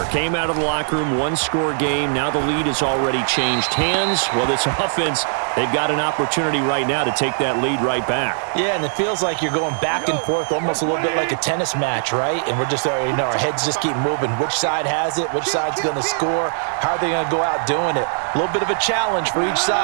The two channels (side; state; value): left; silent; 66 dB below the other